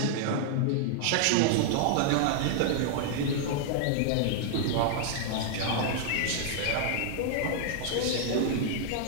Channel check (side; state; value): both; different; correlation -0.01